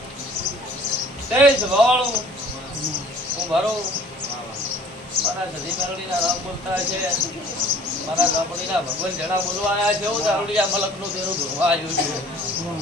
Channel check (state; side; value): normal; both; correlation 0.51